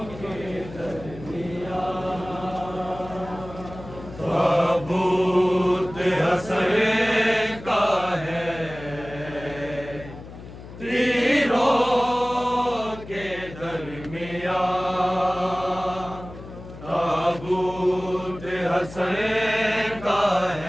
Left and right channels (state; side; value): noise; left; hum, 15 dB below the sound